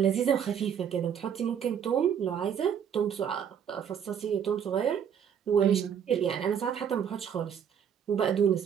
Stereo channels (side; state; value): left; quieter; 8.2 dB